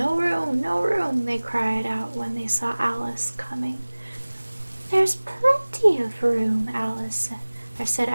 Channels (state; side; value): inverted; both; correlation -1.00